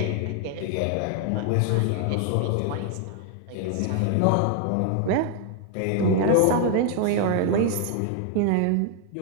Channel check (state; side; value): different; both; correlation 0.00